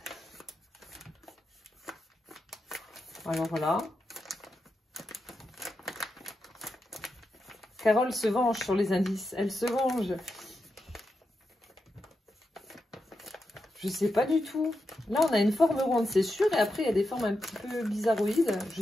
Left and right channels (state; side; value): normal; both; correlation 0.87